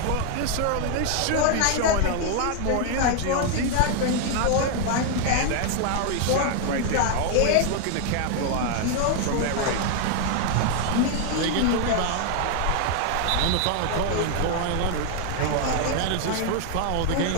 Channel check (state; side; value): different; both; correlation 0.00